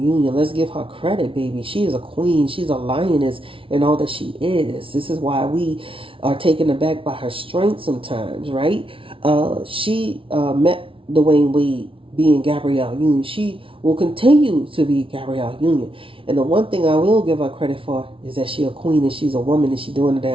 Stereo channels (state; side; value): late; left; 0.25 ms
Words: Let's give her credit, baby. She is a queen. She's a lioness in all that she is. This is why we are taken aback by her strength sometimes, right? She met Dwayne Wade being Gabrielle Union. She will continue to be Gabrielle Union. And the one thing I will give her credit for is that she's a queen and she's a woman and she's doing the